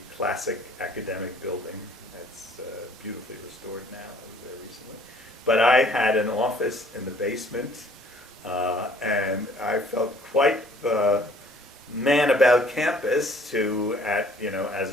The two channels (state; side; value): normal; both; correlation 0.57